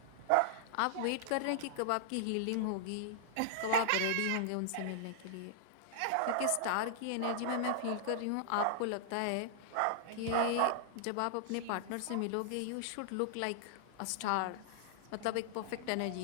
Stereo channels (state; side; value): different; both; correlation -0.01